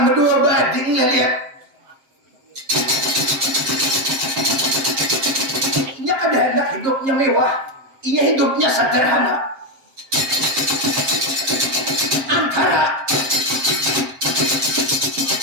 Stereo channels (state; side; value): late; left; 7.6 ms